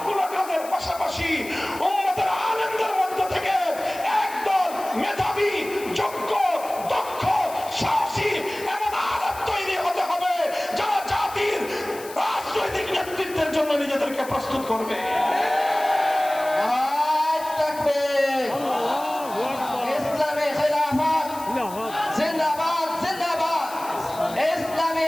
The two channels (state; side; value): noise; left; hiss, 16 dB below the sound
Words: কাজের পাশাপাশি উম্মতের আলেমদের মধ্য থেকে একদল মেধাবী, যোগ্য, দক্ষ, সাহসী এবং আলেম তৈরি হতে হবে যারা জাতির রাজনৈতিক নেতৃত্বের জন্য নিজেদেরকে প্রস্তুত করবে। ইসলামী খিলাফত জিন্দাবাদ, জিন্দাবাদ। ইসলামী